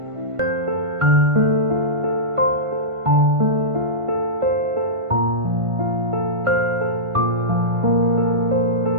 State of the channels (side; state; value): left; late; 1.5 ms